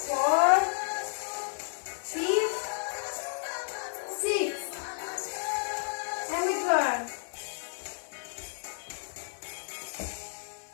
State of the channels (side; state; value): right; silent; digital silence